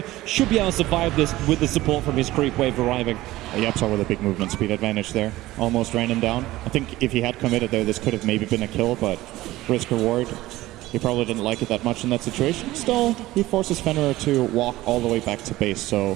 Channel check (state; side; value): quieter; left; 17.0 dB